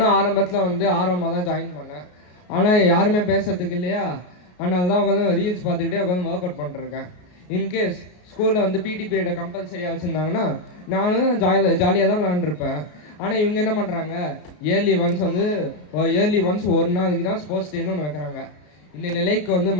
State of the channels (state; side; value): late; right; 33 ms